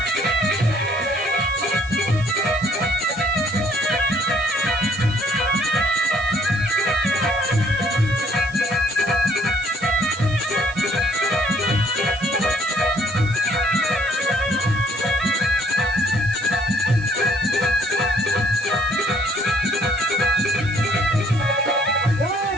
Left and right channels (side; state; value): right; noise; hiss, 22 dB below the sound